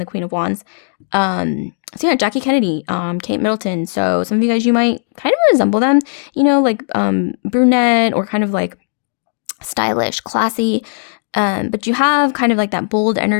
the Queen of Wands. So yeah, Jackie Kennedy, Kate Middleton. So some of you guys, you might kind of resemble them, you know, like brunette or kind of like stylish, classy, but you have kind of like that bold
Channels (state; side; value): silent; right; digital silence